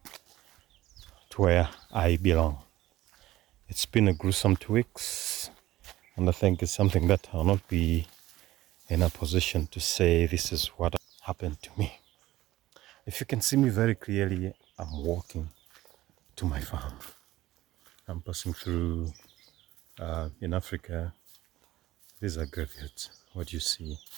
to where I belong. It's been a gruesome 2 weeks, and I think it's something that I'll not be in a position to say this is what happened to me. If you can see me very clearly, I'm walking to my farm. I'm passing through in Africa. These are graveyards. What you see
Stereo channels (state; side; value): quieter; left; 15.9 dB